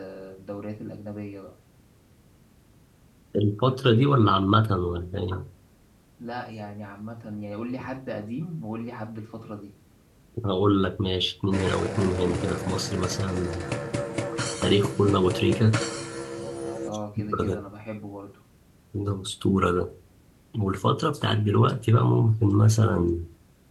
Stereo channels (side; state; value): both; identical; correlation 1.00